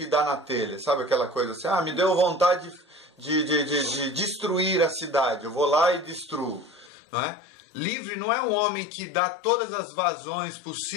dá na telha, sabe aquela coisa assim, me deu vontade de destruir a cidade, eu vou lá e destruo, não é? Livre não é um homem que dá todas as vazões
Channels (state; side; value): drops out; right; at 6.9 s